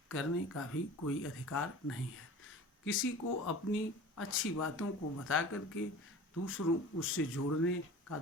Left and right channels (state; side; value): normal; both; correlation 0.39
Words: करने का भी कोई अधिकार नहीं है। किसी को अपनी अच्छी बातों को बता करके दूसरों उससे जोड़ने का